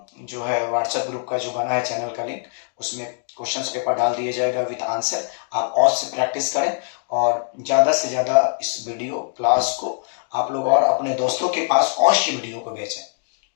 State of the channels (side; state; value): right; silent; 64 dB below the other